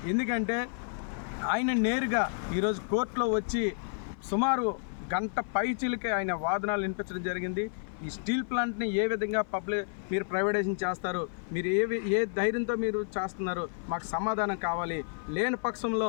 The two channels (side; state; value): right; silent; 55 dB below the other